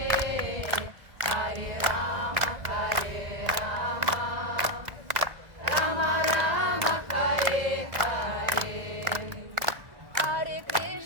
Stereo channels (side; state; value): left; late; 2.0 ms